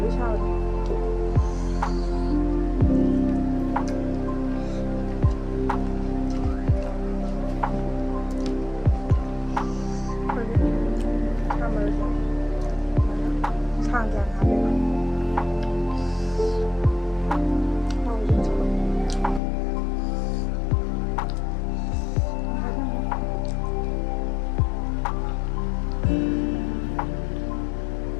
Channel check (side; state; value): right; drops out; at 19.4 s